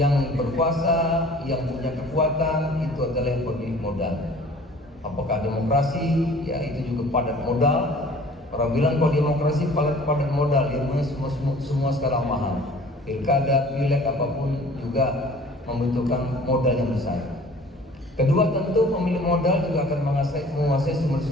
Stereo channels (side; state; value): both; normal; correlation 0.49